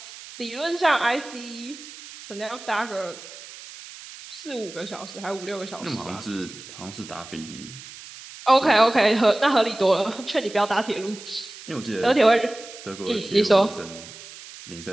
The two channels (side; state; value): right; noise; hiss, 16 dB below the sound